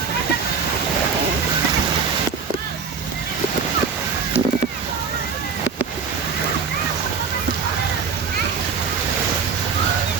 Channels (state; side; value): quieter; left; 5.8 dB